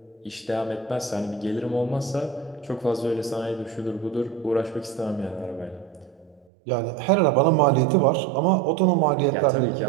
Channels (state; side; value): drops out; left; at 6.5 s